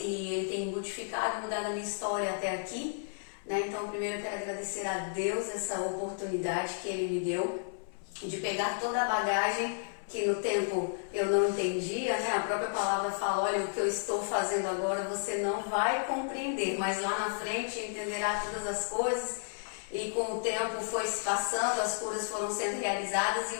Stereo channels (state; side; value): silent; right; 56 dB below the other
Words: Ele tem modificado e mudado a minha história até aqui, né? Então, primeiro eu quero agradecer a Deus essa oportunidade que Ele me deu de pegar toda a bagagem que no tempo eu não entendia, né? A própria palavra fala, olha, o que eu estou fazendo agora você não vai compreender, mas lá na frente entenderá todas as coisas. E com o tempo foi se passando, as curas foram sendo realizadas, e